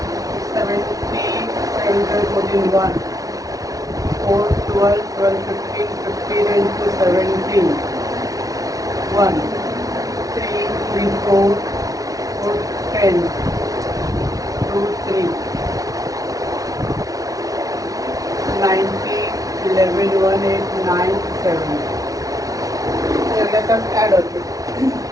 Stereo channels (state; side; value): late; left; 0.17 ms